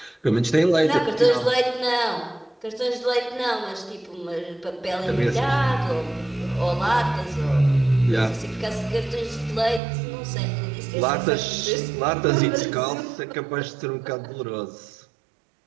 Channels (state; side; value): drops out; left; at 9.8 s